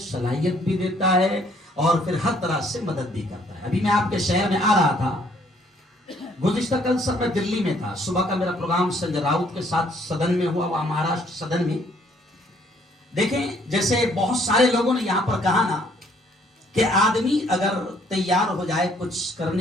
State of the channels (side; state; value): both; normal; correlation 0.64